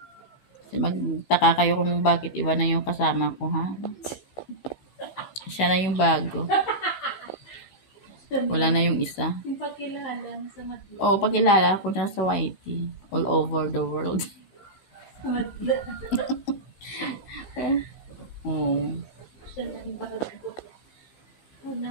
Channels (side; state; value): right; late; 15 ms